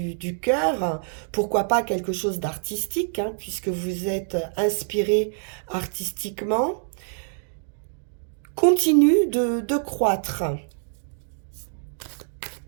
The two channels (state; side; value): silent; left; 61 dB below the other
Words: cœur, pourquoi pas quelque chose d'artistique, puisque vous êtes inspiré artistiquement, continue de croître.